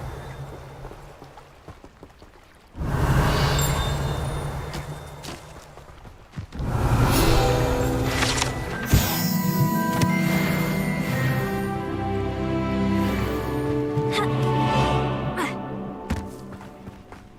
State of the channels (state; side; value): identical; both; correlation 1.00